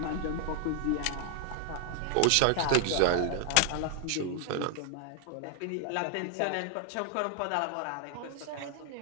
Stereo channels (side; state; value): both; different; correlation 0.00